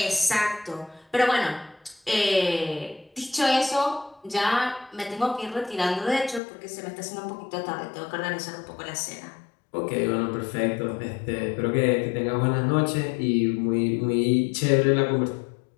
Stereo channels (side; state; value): right; drops out; at 6.4 s